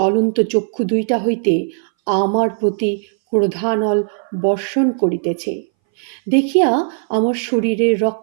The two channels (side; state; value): left; silent; 63 dB below the other